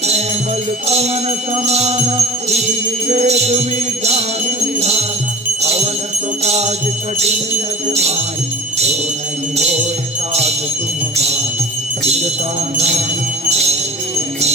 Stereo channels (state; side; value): normal; both; correlation 0.38